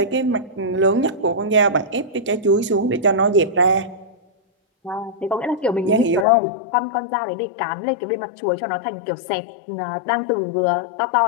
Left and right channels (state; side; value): drops out; right; at 6.2 s